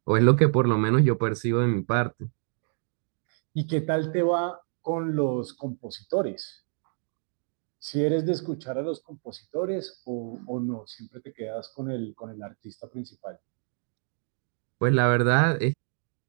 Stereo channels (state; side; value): silent; left; 56 dB below the other